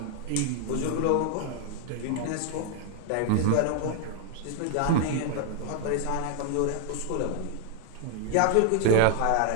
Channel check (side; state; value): both; different; correlation 0.00